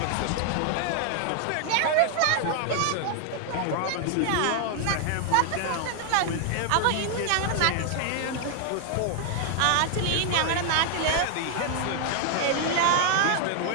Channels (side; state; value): both; different; correlation 0.00